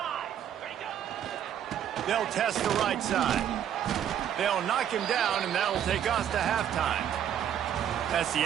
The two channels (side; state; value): left; quieter; 9.8 dB